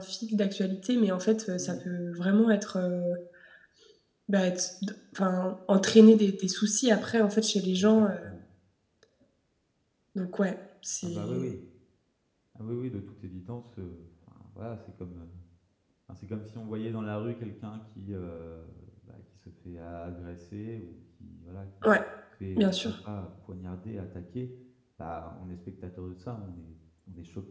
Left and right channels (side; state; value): both; identical; correlation 1.00